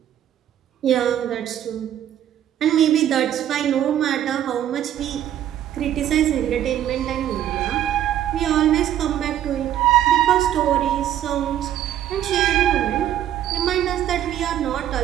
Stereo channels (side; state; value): left; quieter; 11.3 dB